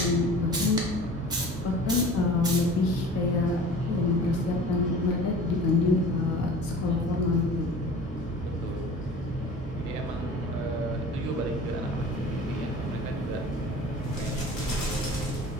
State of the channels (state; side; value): normal; both; correlation 0.42